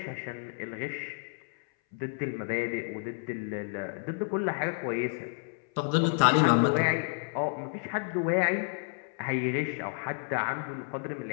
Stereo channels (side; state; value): right; silent; 57 dB below the other